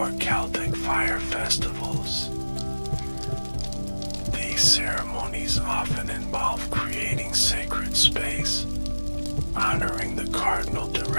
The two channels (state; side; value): inverted; both; correlation -1.00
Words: Celtic fire festivals. These ceremonies often involve creating sacred space, honoring the cardinal